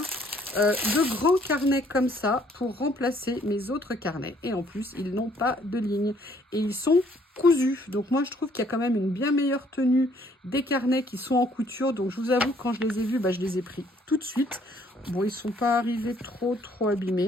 de grands carnets comme ça pour remplacer mes autres carnets. Et en plus, ils n'ont pas de ligne. Et ils sont cousus. Donc moi, je trouve qu'il y a quand même une bien meilleure tenue des carnets qui sont en couture. Donc je vous avoue, quand je les ai vus, bah, je les ai pris tout de suite. Bon, ils ne sont pas arrivés trop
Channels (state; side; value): normal; both; correlation 0.63